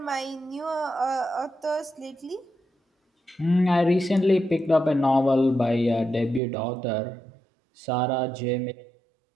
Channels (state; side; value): drops out; left; at 6.4 s